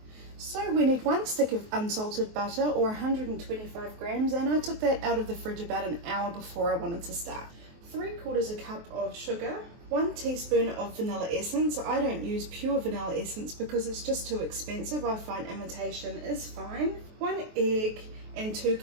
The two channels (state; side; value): late; left; 23 ms